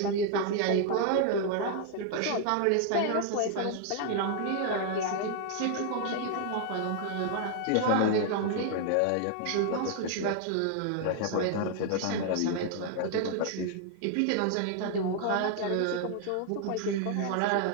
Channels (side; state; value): both; different; correlation 0.00